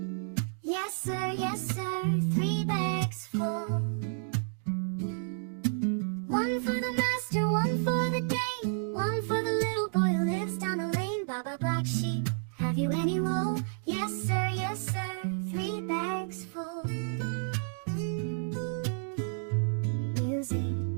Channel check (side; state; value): left; silent; digital silence